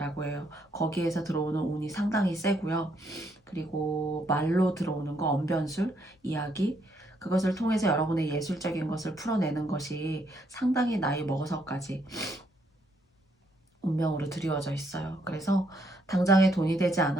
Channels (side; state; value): both; normal; correlation 0.73